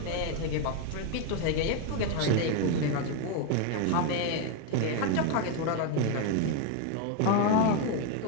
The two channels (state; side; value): different; both; correlation 0.02